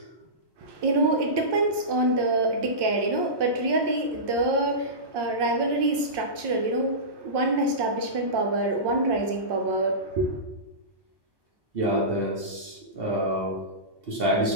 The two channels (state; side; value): late; left; 1.1 ms